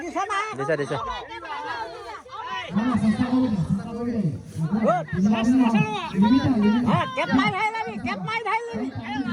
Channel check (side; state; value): both; identical; correlation 1.00